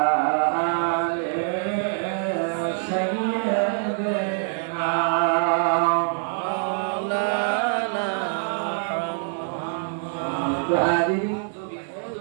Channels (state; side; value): silent; left; 62 dB below the other